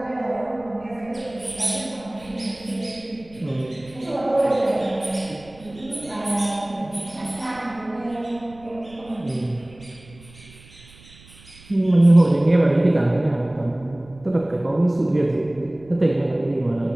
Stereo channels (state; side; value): noise; right; rumble, 23 dB below the sound